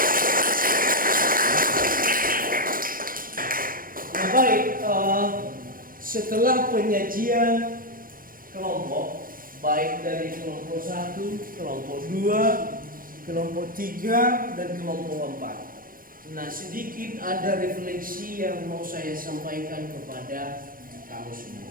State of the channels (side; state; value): left; late; 0.41 ms